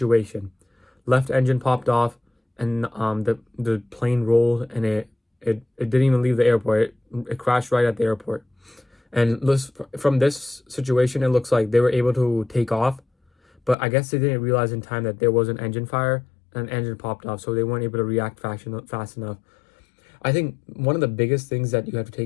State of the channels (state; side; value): drops out; right; at 13.8 s